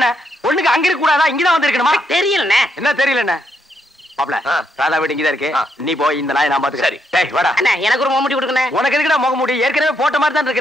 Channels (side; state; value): both; normal; correlation 0.77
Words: ஒண்ணுக்கு அங்க இருக்க கூடாதா? இங்கதான் வந்து இருக்கணுமா? தெரியலண்ணே. என்ன தெரியலண்ணே? மாப்ள, ராதா வீடு இங்கதான் இருக்கு. நீ போய் இந்த நாயை நான் பாத்துக்கிறேன். சரி. டேய் வாடா. அண்ணா, எனக்கு ஒரு முகமூடி கொடுக்கண்ணே. உனக்கு எதுக்குடா முகமூடி? ஏற்கனவே போட்ட மாதிரி தான்